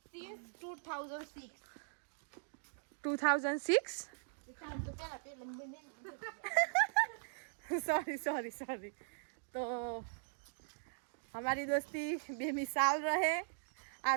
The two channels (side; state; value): left; silent; digital silence